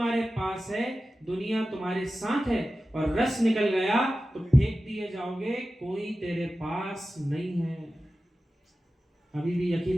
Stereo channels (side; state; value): both; normal; correlation 0.94